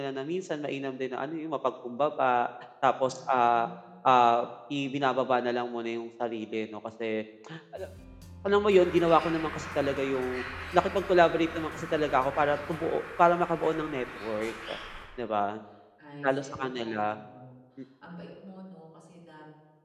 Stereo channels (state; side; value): identical; both; correlation 1.00